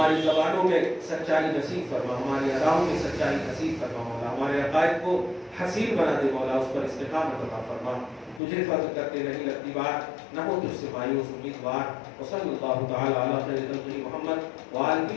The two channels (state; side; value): drops out; right; at 8.4 s